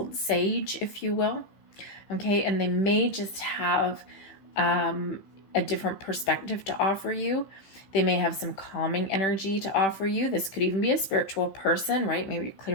sage, if you will. Okay, and they may just have a different perspective to offer you. They may have some calming energy to offer you. This could even be a spiritual person, right? Maybe you're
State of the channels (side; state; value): right; late; 15 ms